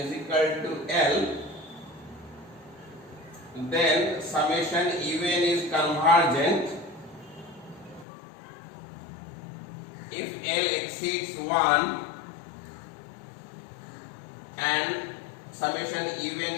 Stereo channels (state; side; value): drops out; right; at 8.1 s